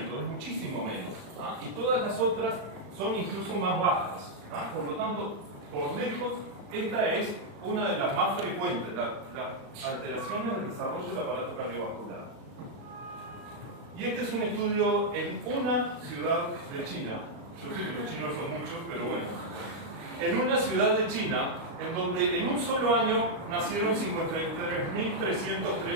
es muchísimo menos. Y todas las otras son incluso más bajas. Por lo tanto, por lejos, esta es una de las más frecuentes, las alteraciones del desarrollo del aparato cardiovascular. Y este es un estudio en una ciudad de China. Yo sé que los chinos son muchos, pero bueno. En una ciudad de China, en donde en un solo año nacieron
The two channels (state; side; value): late; left; 36 ms